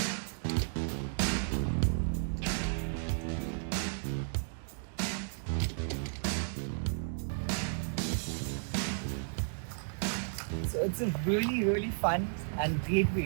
So it's a really fun and great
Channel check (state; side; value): silent; left; digital silence